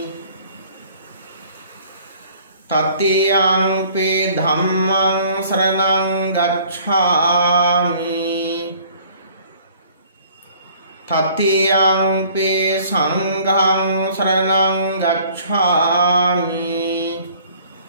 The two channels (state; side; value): inverted; both; correlation -0.54